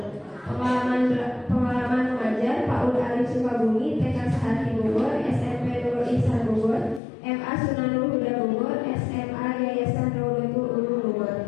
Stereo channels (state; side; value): drops out; right; at 7.0 s